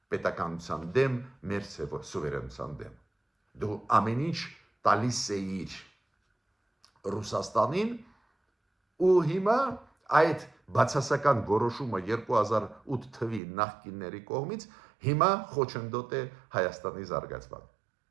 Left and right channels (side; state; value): left; drops out; at 13.4 s